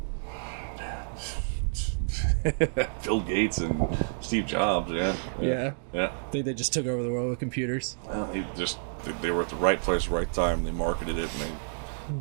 Bill Gates and Steve Jobs. Yeah. Think they just took over the world with computers. Well, they were at the right place, right time. They marketed it,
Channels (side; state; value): left; silent; digital silence